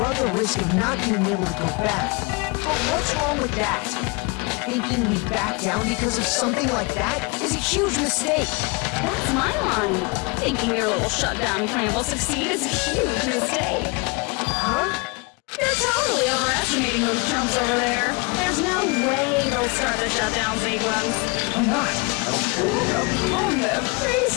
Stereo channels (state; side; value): quieter; right; 29.0 dB